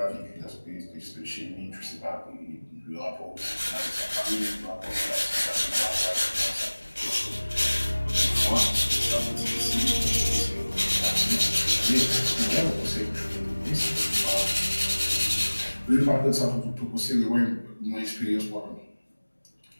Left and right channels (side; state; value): both; inverted; correlation -1.00